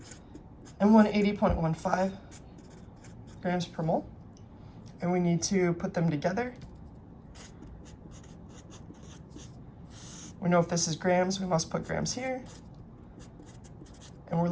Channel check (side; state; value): both; identical; correlation 1.00